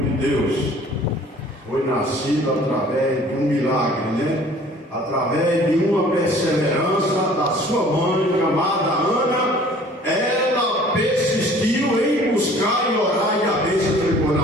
de Deus, foi nascido através de um milagre, né? Através de uma perseverança da sua mãe, chamada Ana. Ela persistiu em buscar e orar, e a bênção ficou na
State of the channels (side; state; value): both; normal; correlation 0.51